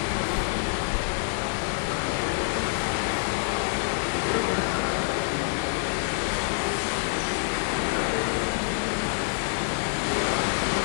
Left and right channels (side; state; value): right; silent; 60 dB below the other